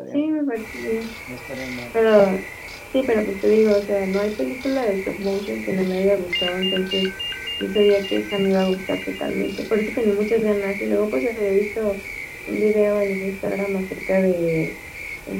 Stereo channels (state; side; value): identical; both; correlation 1.00